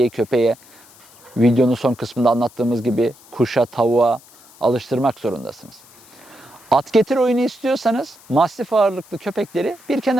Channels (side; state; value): left; noise; hiss, 25 dB below the sound